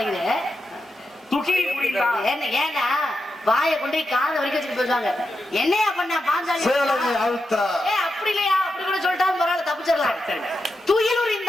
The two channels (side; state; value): both; normal; correlation 0.88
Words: துகில் உரிந்தான். ஏன்னா வாயை கொண்டு காதை வரைக்கும் வச்சுட்டு போயிடுவாங்க. என்னையா பண்ண பாஞ்சாலி? சேலனை அழுத்தா. அப்படி இல்லையா? அப்படி கூட சொல்லிட்டாலும் பரவாயில்ல, தப்பிச்சிடலாம். சரிங்க. துயில்